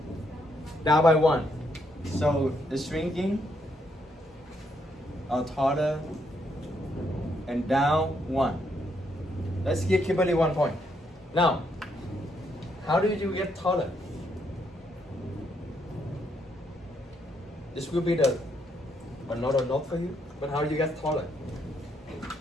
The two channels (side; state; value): both; normal; correlation 0.75